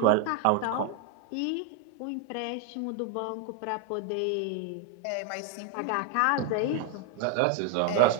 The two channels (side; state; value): both; different; correlation 0.01